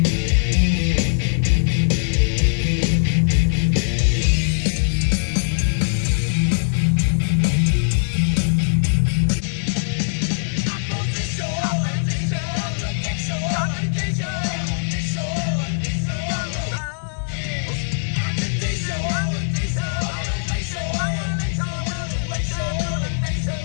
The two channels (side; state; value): right; silent; 65 dB below the other